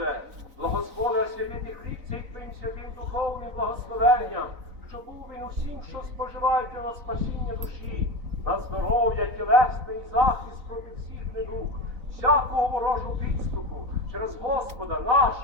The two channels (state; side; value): late; left; 4.0 ms